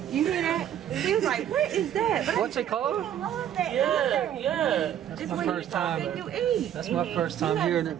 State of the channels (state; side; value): quieter; left; 10.3 dB